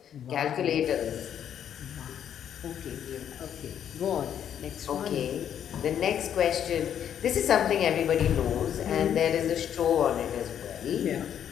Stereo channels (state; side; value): quieter; right; 9.4 dB